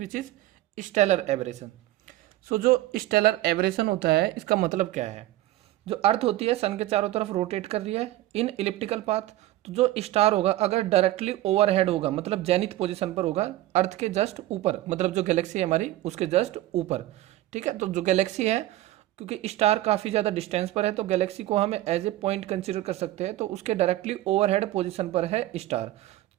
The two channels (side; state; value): left; quieter; 15.6 dB